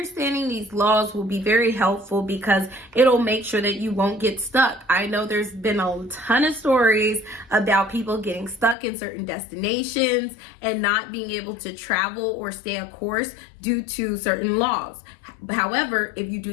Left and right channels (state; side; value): drops out; right; at 8.8 s